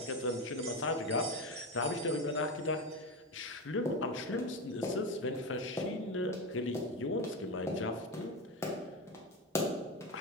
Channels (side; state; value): both; normal; correlation 0.17